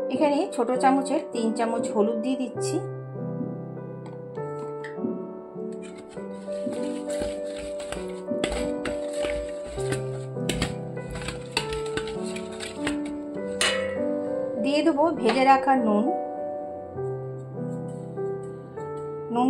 এখানে ছোট চামচের 3 চামচ হলুদ দিয়ে দিচ্ছি। দিয়ে দেবো ভেজে রাখা নুন।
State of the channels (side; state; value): both; identical; correlation 1.00